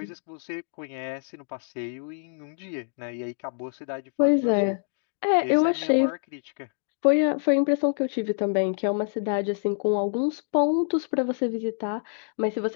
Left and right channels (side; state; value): right; silent; digital silence